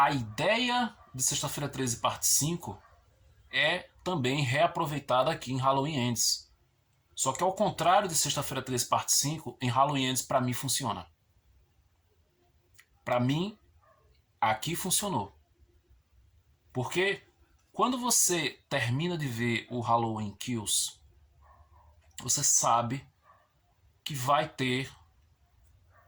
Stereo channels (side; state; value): both; identical; correlation 1.00